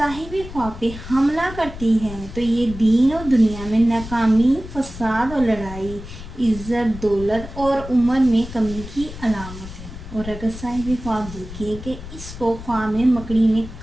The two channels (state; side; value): noise; left; rumble, 12 dB below the sound